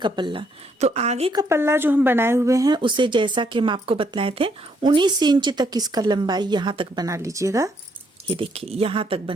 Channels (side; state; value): both; normal; correlation 0.71